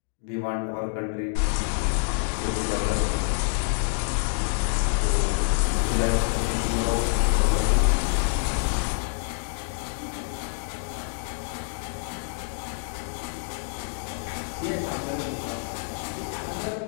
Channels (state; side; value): silent; right; digital silence